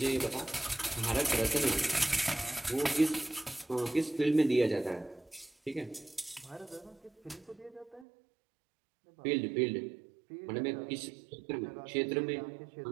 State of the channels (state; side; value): drops out; left; at 8.1 s